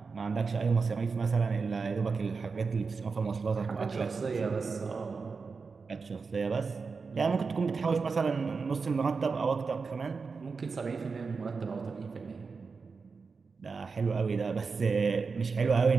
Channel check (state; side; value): quieter; left; 4.8 dB